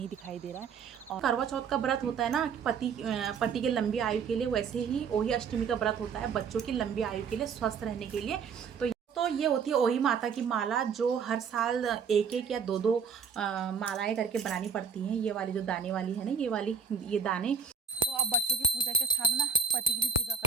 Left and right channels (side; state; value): left; quieter; 6.1 dB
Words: दिखाई दे रहा है। और करवा चौथ का व्रत होता है ना कि पति के लंबी आयु के लिए, वैसे ही ओही अष्टमी का व्रत होता है बच्चों की लंबी आयु के लिए, स्वस्थ रहने के लिए। तो ये होती है ओही माता की माला जो हर साल एक एक या दो दो मालाएं करके बनानी पड़ती हैं। ये वाली जो दाने वाली है ना, ये दाने। तो अब बच्चों की पूजा के साथ ना पति की भी पूजा